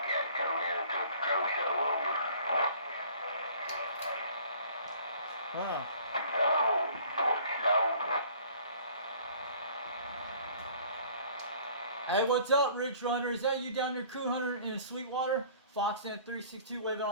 come in and took the crow show over. Wow. Oh, Hey, what's up, Ridge Runner? Is that you down there, Coup Hunter in Sweetwater? Foxman 362 waving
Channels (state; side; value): inverted; both; correlation -0.52